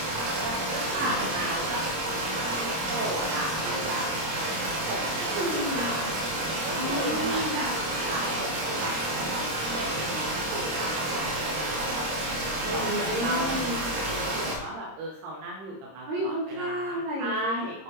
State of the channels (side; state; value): left; late; 26 ms